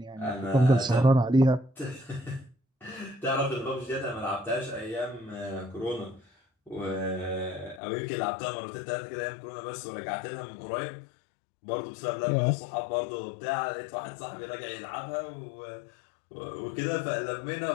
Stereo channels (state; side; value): drops out; right; at 7.8 s